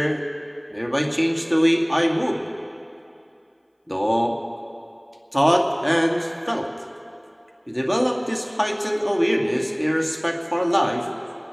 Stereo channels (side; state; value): both; identical; correlation 1.00